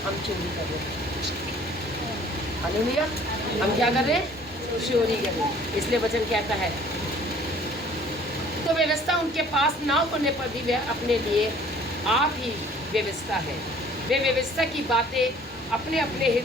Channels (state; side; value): normal; both; correlation 0.53